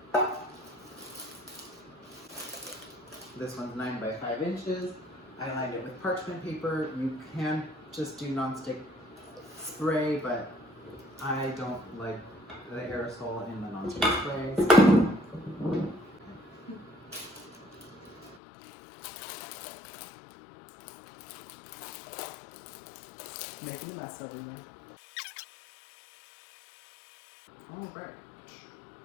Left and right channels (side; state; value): right; drops out; at 18.4 s